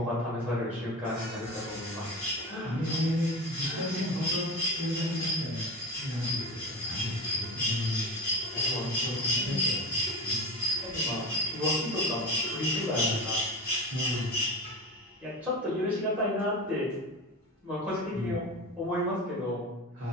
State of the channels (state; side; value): normal; both; correlation 0.27